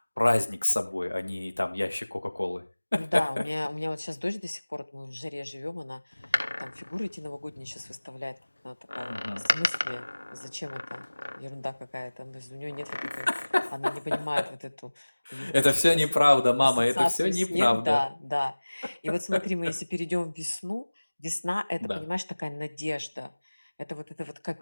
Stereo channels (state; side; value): inverted; both; correlation -1.00